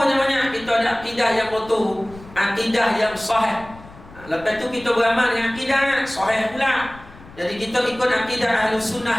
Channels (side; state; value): left; noise; rumble, 20 dB below the sound